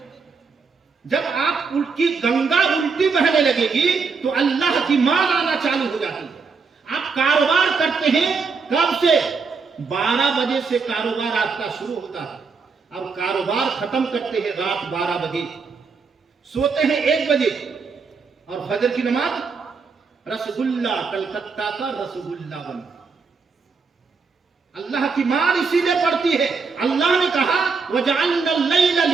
جب آپ کی گنگا الٹی بہنے لگے گی تو اللہ کی مار آنا چالو ہو جاتی ہے۔ آپ کاروبار کرتے ہیں کب سے؟ 12 بجے سے کاروبار آپ کا شروع ہوتا ہے اور کاروبار ختم کرتے ہیں رات 12 بجے، سوتے ہیں 1 بجے، اور فجر کی نماز رسگلہ کلکتہ کا رسگلہ بن۔ اللہ کی مار اسی لیے پڑتی ہے۔ اللہ نے کہا وَجَعَلْنَا اللَّيْلَ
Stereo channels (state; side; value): quieter; left; 4.9 dB